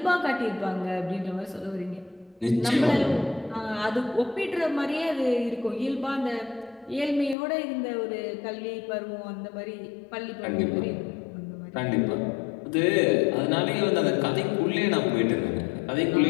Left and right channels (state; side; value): drops out; right; at 7.4 s